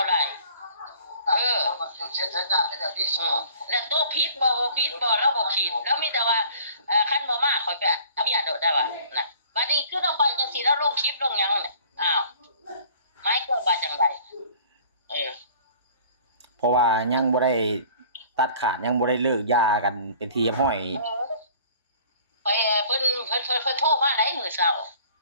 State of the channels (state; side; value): inverted; both; correlation -0.51